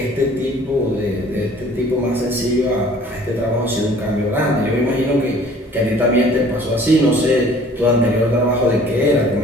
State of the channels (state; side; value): normal; both; correlation 0.52